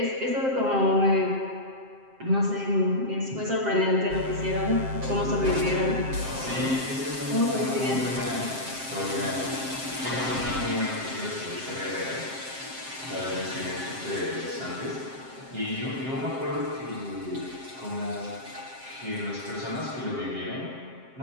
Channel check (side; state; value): left; late; 7.6 ms